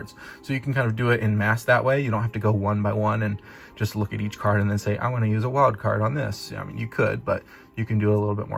So you can kind of do it in mass that way. You don't have to go one by one and just look at each card and then say, I want to use a wild card on this. I mean, you could, but you can do it a little bit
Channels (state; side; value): identical; both; correlation 1.00